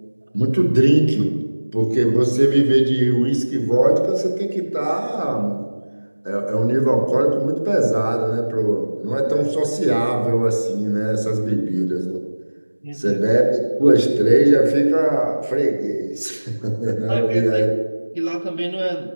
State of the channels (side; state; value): both; inverted; correlation -1.00